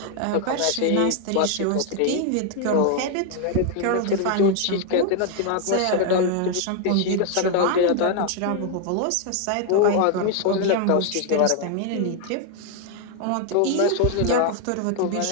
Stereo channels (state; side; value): different; both; correlation 0.00